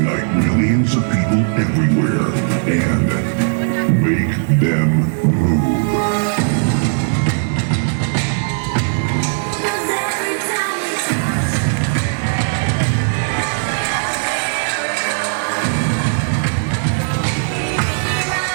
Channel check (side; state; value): left; silent; digital silence